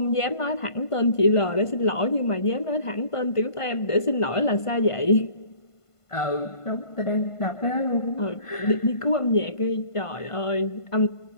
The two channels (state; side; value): late; right; 1.5 ms